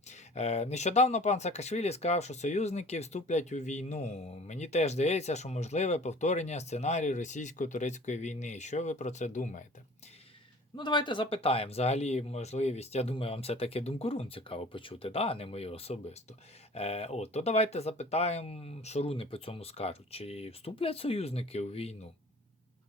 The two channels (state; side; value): normal; both; correlation 0.46